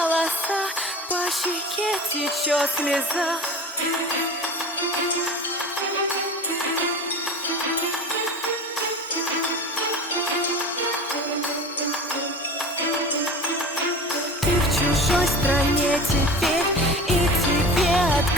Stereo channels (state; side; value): normal; both; correlation 0.34